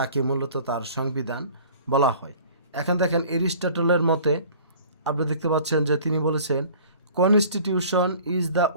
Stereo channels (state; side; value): inverted; both; correlation -0.47